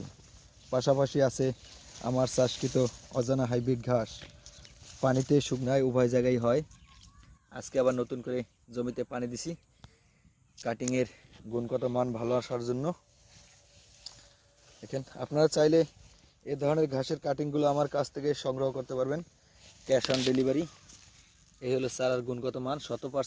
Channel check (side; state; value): both; identical; correlation 1.00